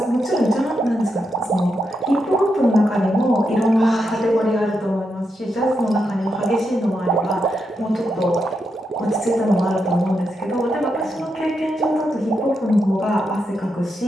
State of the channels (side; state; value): both; normal; correlation 0.84